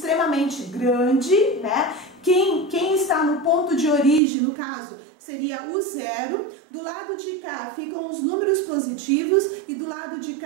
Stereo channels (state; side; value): drops out; left; at 4.2 s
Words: grande, né? Quem está no ponto de origem, no caso, seria o 0. Do lado de cá ficam os números positivos e do lado de